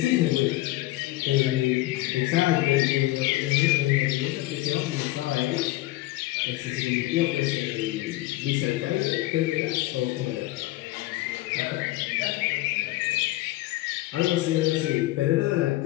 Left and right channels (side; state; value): right; quieter; 17.7 dB